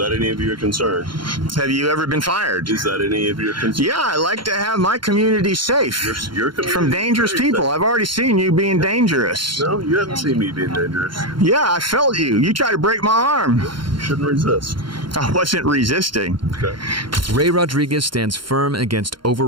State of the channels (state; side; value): late; left; 0.72 ms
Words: any of your concern? Have you ever been fired? Is that any of your concern? Yeah, I like to have my community safe Your community from dangerous people. safe. I've already seen you being dangerous. No, you haven't seen me being dangerous. Yeah, I felt you. You tried to break my arm. You shouldn't resist. I wasn't resisting. Okay. Ray Rodriguez stands firm against